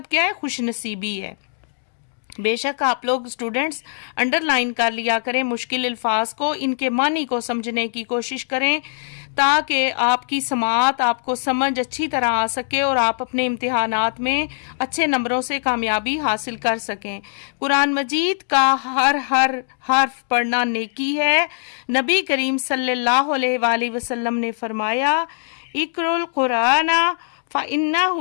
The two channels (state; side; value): silent; right; digital silence